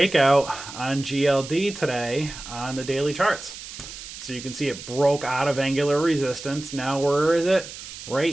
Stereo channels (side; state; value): right; noise; hiss, 12 dB below the sound